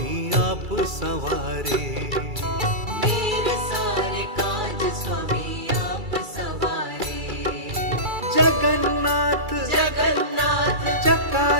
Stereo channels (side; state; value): left; late; 2.3 ms